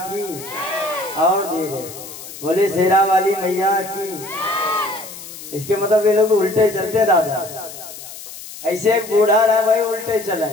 और धीरे, बोले शेरा वाली मैया की। इसके मतलब ये लोग उल्टे चलते दादा। ऐसे एक बूढ़ा रहा वही उल्टे चला,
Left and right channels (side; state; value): left; noise; hiss, 14 dB below the sound